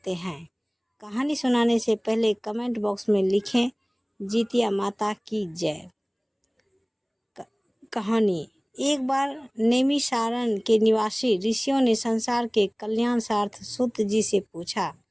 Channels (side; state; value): both; identical; correlation 1.00